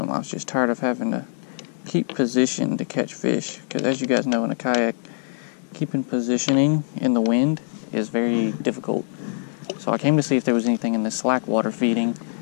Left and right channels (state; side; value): silent; right; digital silence